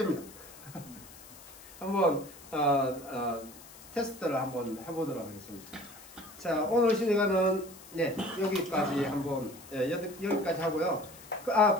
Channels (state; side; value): noise; left; hiss, 19 dB below the sound